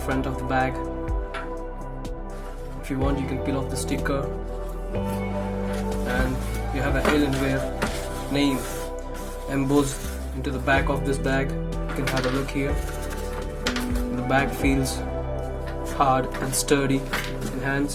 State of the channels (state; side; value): identical; both; correlation 1.00